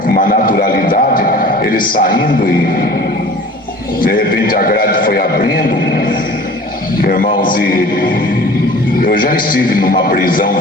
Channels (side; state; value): both; normal; correlation 0.44